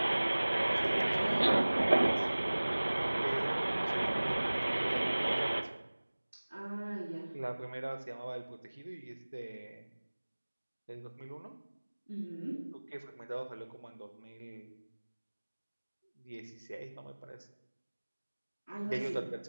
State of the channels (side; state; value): both; inverted; correlation -1.00